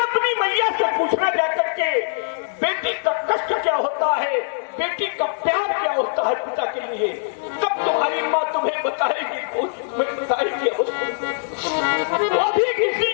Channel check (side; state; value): right; silent; 64 dB below the other